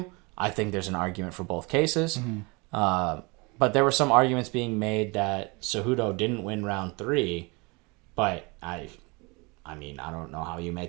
I think there's an argument for both cases. Mm-hmm. But there were some arguments being made that Cejudo didn't win round 3, but I mean, I don't know how you make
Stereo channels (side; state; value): left; quieter; 27.8 dB